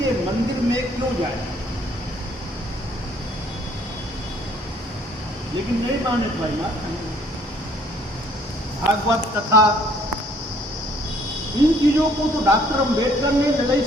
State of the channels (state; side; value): normal; both; correlation 0.61